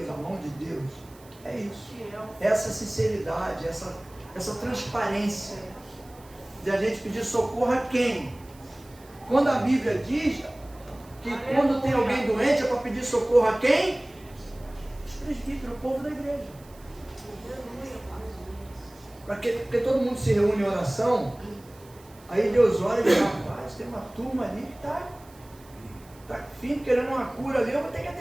a mão de Deus? É isso. Essa sinceridade, essa transparência de a gente pedir socorro a quem? Quando a Bíblia diz, que quando tem alguém doente é para pedir socorro a quem? Os presbíteros, o povo da igreja. Porque todo mundo se reúne em oração, aí Deus olha e diz, rapaz, tem uma turma ali que está afim, querendo uma cura ali, eu vou ter que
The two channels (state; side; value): noise; right; hiss, 26 dB below the sound